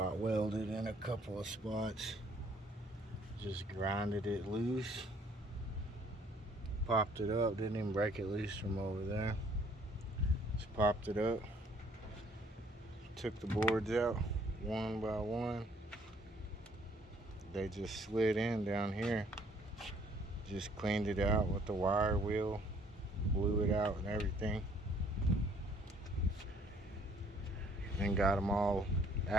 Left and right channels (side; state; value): both; normal; correlation 0.61